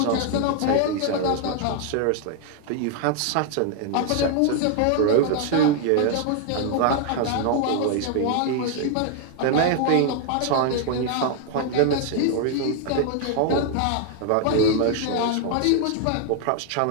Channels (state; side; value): different; both; correlation 0.00